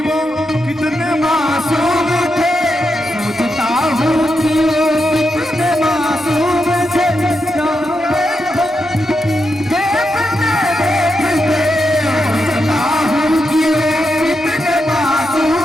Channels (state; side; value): normal; both; correlation 0.85